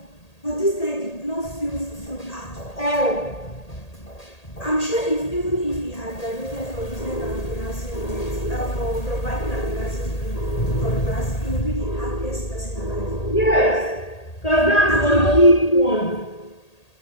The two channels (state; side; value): late; right; 1.8 ms